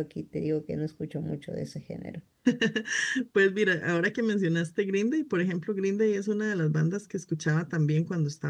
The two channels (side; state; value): both; identical; correlation 1.00